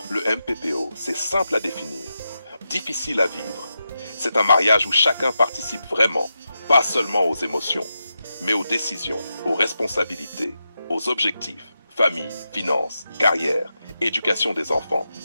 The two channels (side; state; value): both; inverted; correlation -0.88